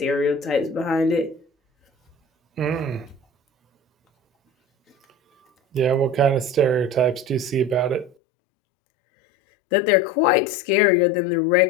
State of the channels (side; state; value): right; drops out; at 8.1 s